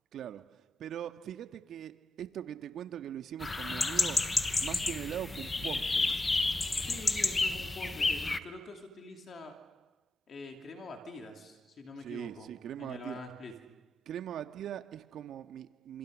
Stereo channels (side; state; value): both; normal; correlation 0.88